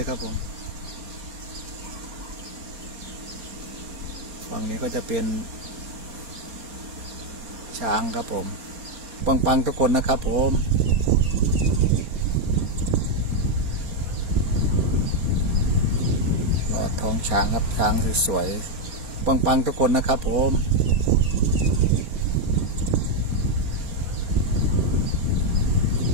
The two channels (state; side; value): late; left; 4.3 ms